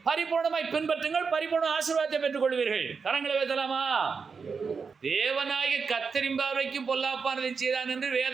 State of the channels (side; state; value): left; quieter; 5.4 dB